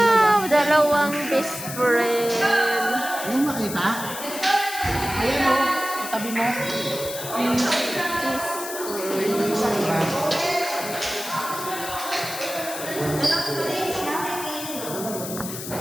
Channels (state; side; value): noise; left; hiss, 9 dB below the sound